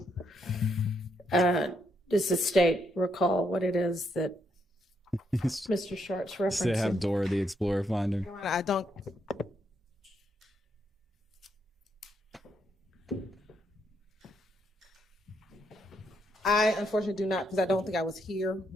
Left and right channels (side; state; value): both; normal; correlation 0.76